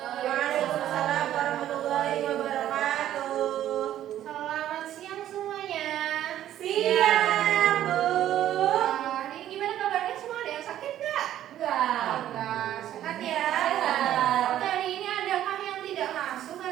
warahmatullahi wabarakatuh. Selamat siang semuanya. Siang, Bu. Ini gimana kabarnya semua? Ada yang sakit nggak? Enggak. Sehat ya? Sehat. Oke, hari ini adakah yang tidak masuk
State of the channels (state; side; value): quieter; left; 12.0 dB